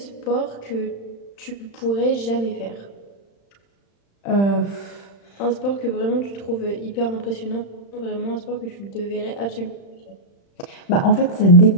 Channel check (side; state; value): right; late; 35 ms